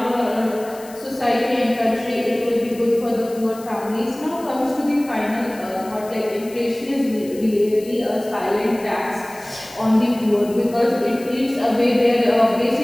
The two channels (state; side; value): noise; left; hiss, 20 dB below the sound